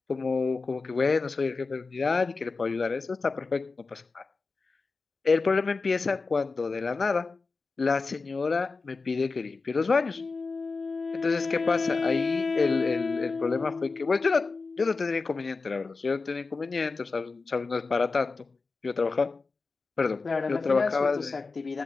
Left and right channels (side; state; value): right; quieter; 4.1 dB